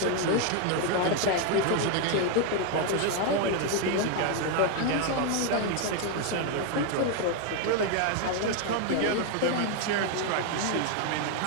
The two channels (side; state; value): both; different; correlation 0.01